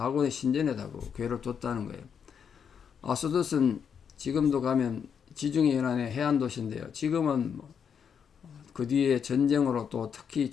신전에다가 교회를 뒀다는 거예요. 아스돗은 지금도 가면 지중해 연안의 해안 도시인데요. 지금은 그 뒤에 전쟁으로 또 특히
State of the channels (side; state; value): right; quieter; 7.3 dB